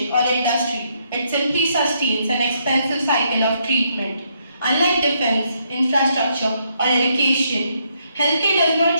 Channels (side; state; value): both; inverted; correlation -0.74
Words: or industry. It simply sustains an expensive cycle of treatment. Unlike defense, infrastructure, or education, healthcare does not